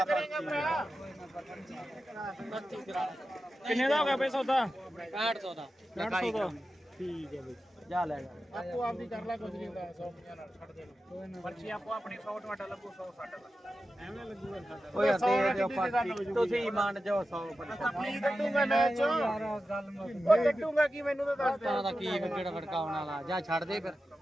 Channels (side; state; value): both; normal; correlation 0.92